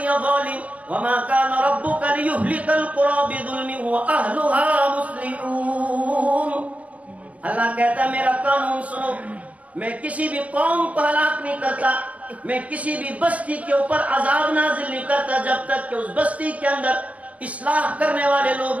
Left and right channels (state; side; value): late; left; 0.068 ms